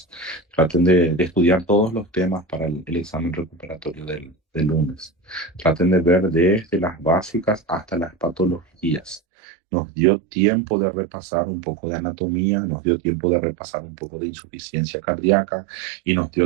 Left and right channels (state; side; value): drops out; left; at 9.2 s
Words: traten de estudiar todos los temas para el examen recuperatorio del lunes. Traten de ver desde las básicas hasta las patologías. Nos dio tiempo de repasar un poco de anatomía, nos dio tiempo de repasar un poco de insuficiencia cardíaca y nos